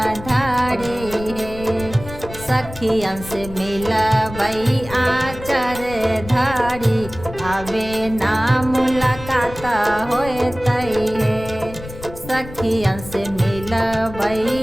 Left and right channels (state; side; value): noise; left; rumble, 13 dB below the sound